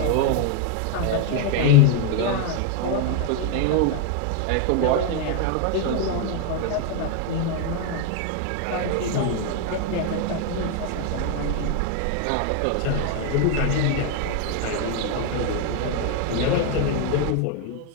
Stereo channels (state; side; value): different; both; correlation 0.01